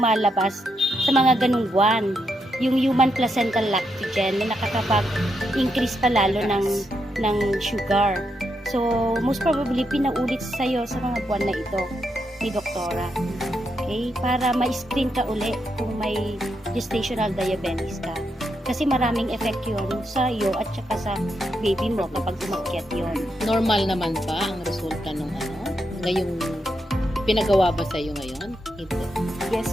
sa mga ganung buwan. Yung human placental lactogen na nakakapag-increase pa lalo ng sugar. So, most probably, pinaulit sa'yo sa mga buwan na ito ni doktora. Okay? Para ma-screen ka uli kung may gestational diabetes ka. Kasi maraming effect yun sa iyo at saka sa baby mo kapag umakyat yun. Normal naman ba ang resulta nung ngayong pinagawa ba sa iyo ngayon? Ito.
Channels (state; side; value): normal; both; correlation 0.81